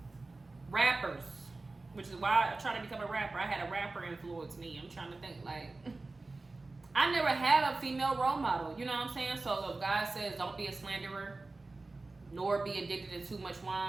Rappers, which is why I tried to become a rapper. I had a rapper influence me. I'm trying to think, like, I never had a female role model, you know what I'm saying? So if God says don't be a slanderer, nor be addicted to too much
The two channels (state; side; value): quieter; left; 3.4 dB